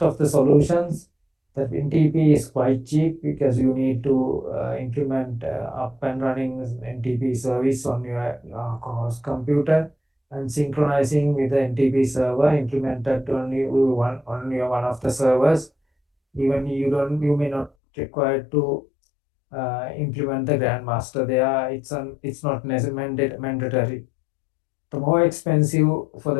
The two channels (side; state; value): right; drops out; at 17.7 s